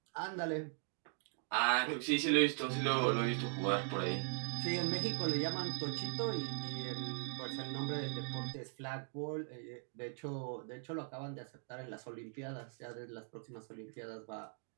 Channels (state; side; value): silent; left; 51 dB below the other